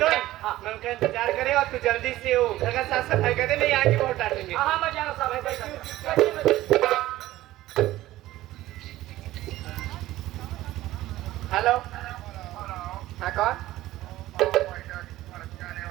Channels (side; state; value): left; quieter; 15.9 dB